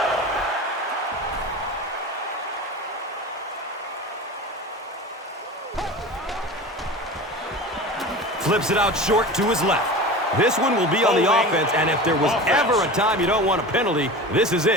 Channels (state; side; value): normal; both; correlation 0.32